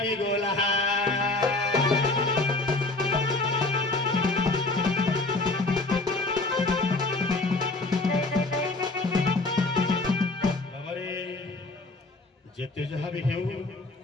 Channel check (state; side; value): quieter; right; 3.1 dB